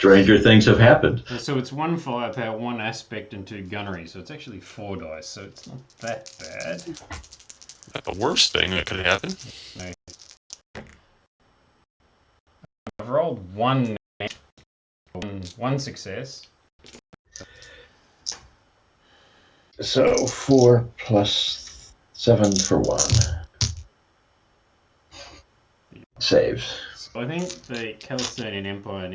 things have happened. So it's 1 firepower, 1 aspect, and 2 gunnery. So it's actually 4 dice. So it's not that bad. Not the worst thing that could happen. No. I've rolled 1 success. So 4 plus 7 for 1. Saves. So I think the Calistonian Empire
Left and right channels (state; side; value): identical; both; correlation 1.00